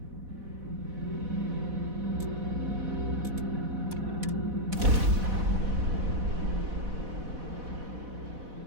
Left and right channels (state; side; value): late; left; 4.1 ms